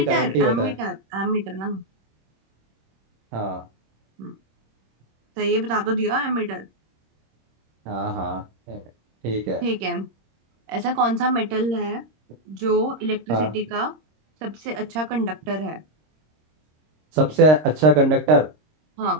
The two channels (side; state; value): left; late; 26 ms